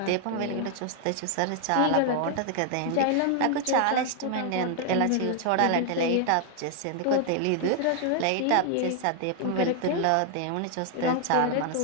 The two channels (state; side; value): different; both; correlation 0.00